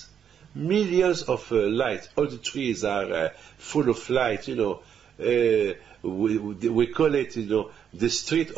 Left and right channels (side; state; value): left; quieter; 8.3 dB